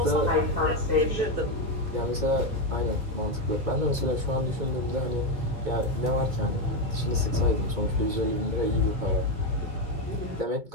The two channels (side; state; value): left; late; 2.2 ms